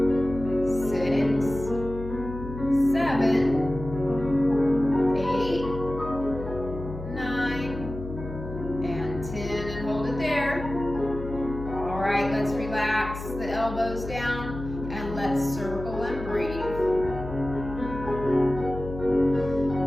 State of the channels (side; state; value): left; noise; hum, 10 dB below the sound